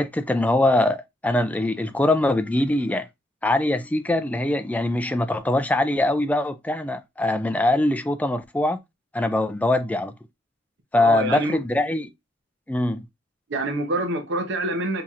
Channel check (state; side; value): normal; both; correlation 0.76